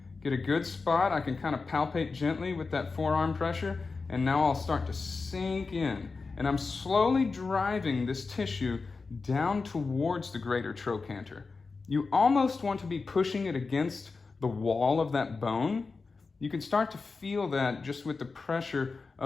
Get a good spot. I can kind of palpate gently with that forearm pressure, and now I'll start to sink in. And I'm slowly driving this tissue down towards the greater trochanter. You almost want to be pushing it against the wall of that bone. You can start to feel that just with the pressure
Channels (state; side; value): quieter; right; 4.3 dB